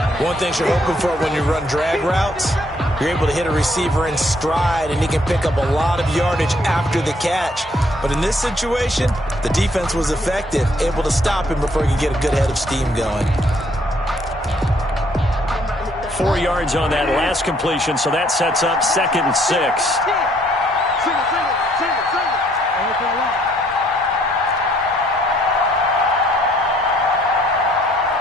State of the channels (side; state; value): both; normal; correlation 0.66